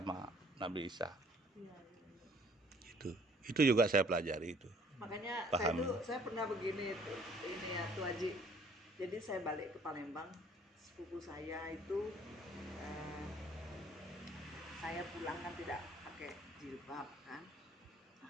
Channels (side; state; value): both; normal; correlation 0.58